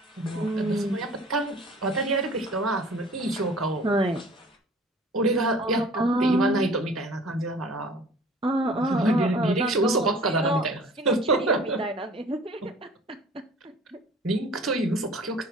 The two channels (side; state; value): both; normal; correlation 0.47